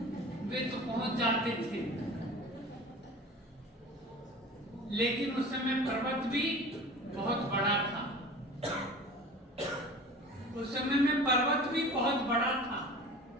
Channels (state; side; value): normal; both; correlation 0.39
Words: वे तो पहुंच जाते थे। लेकिन उस समय पर्वत भी बहुत बड़ा था, उस समय में पर्वत भी बहुत बड़ा था।